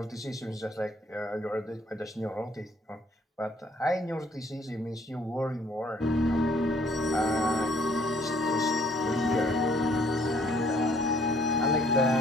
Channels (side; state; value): both; normal; correlation 0.63